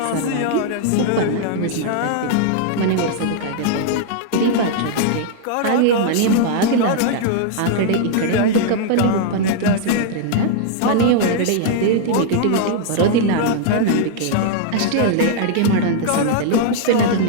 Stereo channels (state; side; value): different; both; correlation 0.00